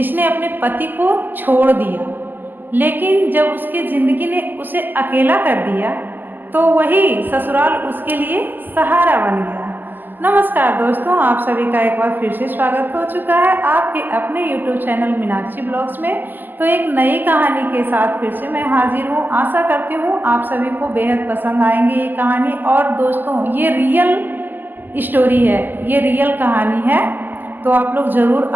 अपने पति को छोड़ दिया, लेकिन जब उसकी ज़िंदगी ने उसे अकेला कर दिया तो वही ससुराल उसके लिए सहारा बन गया। नमस्कार दोस्तों, आप सभी का एक बार फिर से स्वागत हो चुका है आपके अपने YouTube चैनल मीनाक्षी ब्लॉग्स में। तो एक नई कहानी के साथ फिर से मैं हाजिर हूँ। आशा करती हूँ आप सभी को बेहद पसंद आएंगी ये कहानी। और दोस्तों, ये रियल स्टोरी है, ये रियल कहानी है, तो आप लोग ज़रूर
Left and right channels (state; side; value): late; left; 0.089 ms